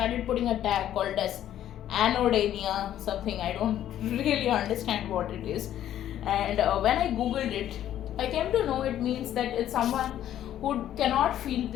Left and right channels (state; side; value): quieter; right; 11.6 dB